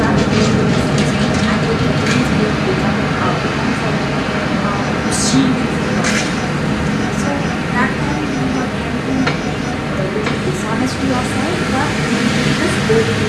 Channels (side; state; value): both; identical; correlation 1.00